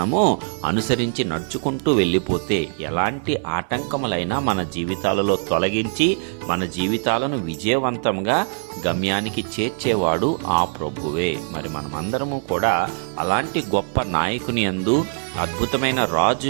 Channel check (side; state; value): left; silent; 61 dB below the other